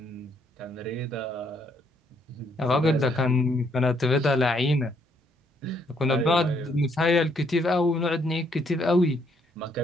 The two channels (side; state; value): both; normal; correlation 0.70